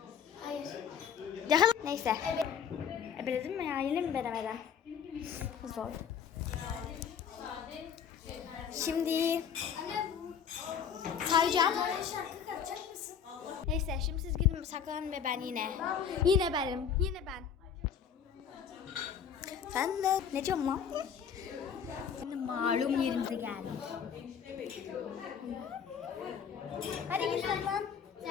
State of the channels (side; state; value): right; quieter; 7.6 dB